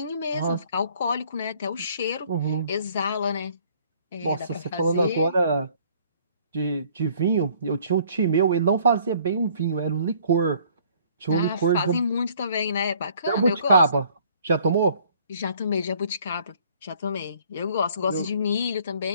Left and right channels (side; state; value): both; inverted; correlation -0.58